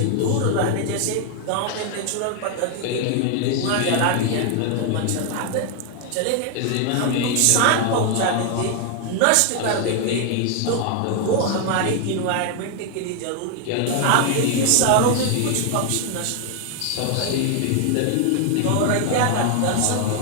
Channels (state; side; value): different; both; correlation 0.00